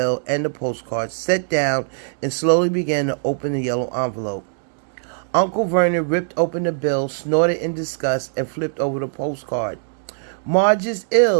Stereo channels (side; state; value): left; silent; digital silence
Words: and the postcard, sat down, and slowly began to open the yellow envelope. Uncle Vernon ripped open the bill, snorted in disgust, and flipped over the postcard. "Marge is